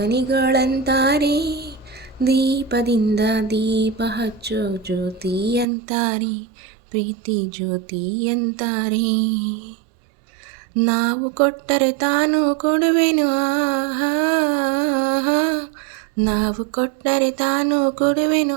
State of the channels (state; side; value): drops out; left; at 5.7 s